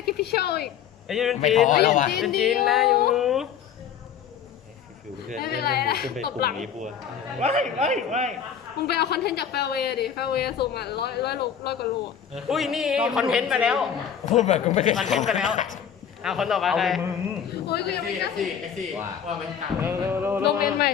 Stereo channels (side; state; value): right; quieter; 8.3 dB